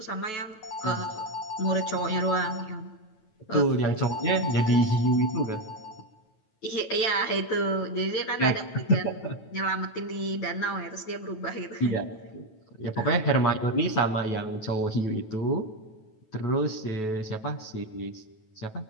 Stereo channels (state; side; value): late; right; 9.2 ms